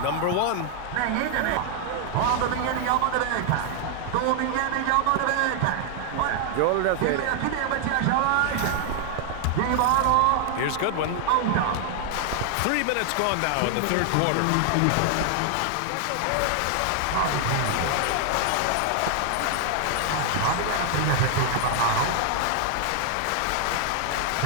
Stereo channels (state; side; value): different; both; correlation 0.00